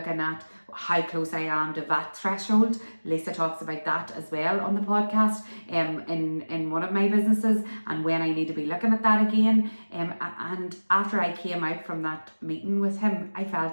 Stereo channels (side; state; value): both; inverted; correlation -1.00